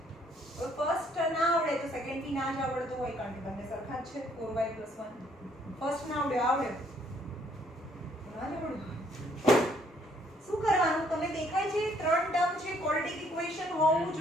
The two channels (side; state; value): both; normal; correlation 0.66